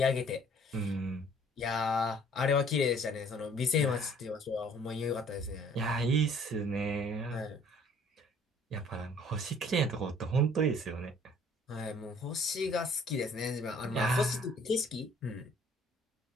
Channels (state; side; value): normal; both; correlation 0.56